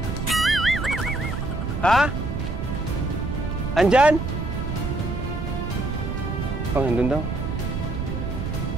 Ha? Andyan? Oh, nandun daw.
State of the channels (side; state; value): right; noise; rumble, 4 dB below the sound